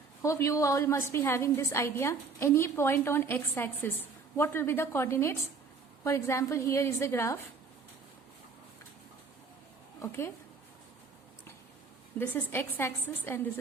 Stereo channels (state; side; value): quieter; left; 4.7 dB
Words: hope you all must be having this idea, any point on x-axis, what will be the coordinates? For example, here is the graph. Okay, this is x-axis and this